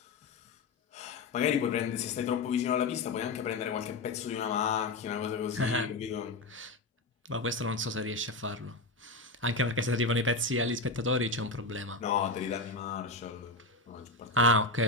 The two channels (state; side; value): quieter; right; 3.3 dB